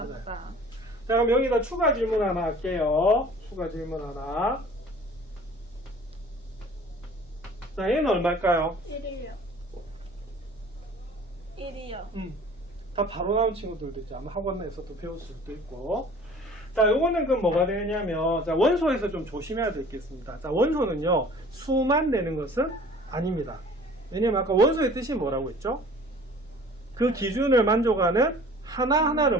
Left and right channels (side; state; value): both; normal; correlation 0.48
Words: 맞다. 자, 그럼 여기다 추가 질문 하나 할게요. 추가 질문 하나. 자, 얘는 얼마일까요? 1이요. 1이요. 다 바로 나온 친구들도 있죠. 아마 학원에서도 배울 수도 있고. 자, 요거는 그럼 뭐가 되냐면, 자, 원소에서 좀 조심해야 될 게 있습니다. 자, 원소는요, 수만 내는 것은 아닙니다. 왜냐면 아까 원소의 뜻이 뭐라고 했죠? 그 기준을 만족하는 하나하나를